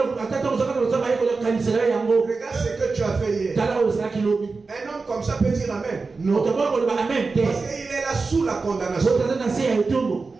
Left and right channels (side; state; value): left; quieter; 4.2 dB